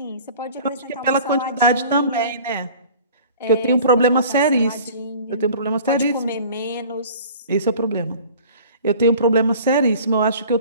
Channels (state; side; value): inverted; both; correlation -0.45